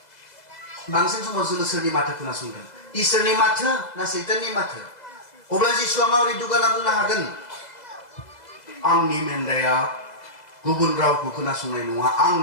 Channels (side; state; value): right; late; 2.0 ms